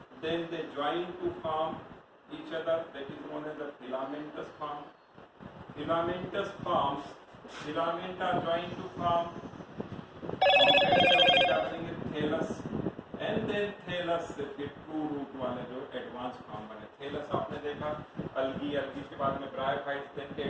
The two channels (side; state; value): both; identical; correlation 1.00